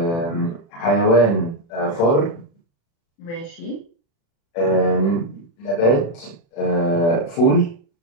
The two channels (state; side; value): late; right; 35 ms